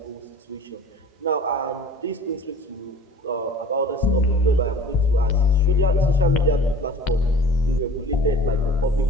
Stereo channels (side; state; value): both; normal; correlation 0.45